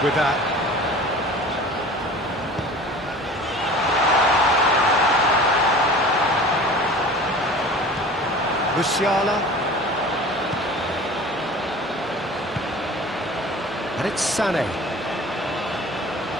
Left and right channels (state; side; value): normal; both; correlation 0.41